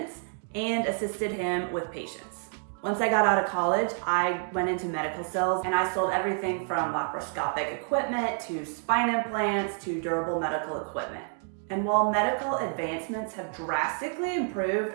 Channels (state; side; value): silent; left; 57 dB below the other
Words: and assisted him with patients. Once I got out of college, I went into medical sales and I sold everything from laparoscopic equipment to spine implants to durable medical equipment. And while medical advancements have drastically